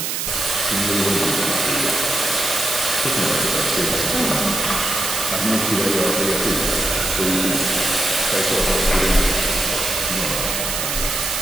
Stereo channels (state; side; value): noise; right; hiss, 1 dB below the sound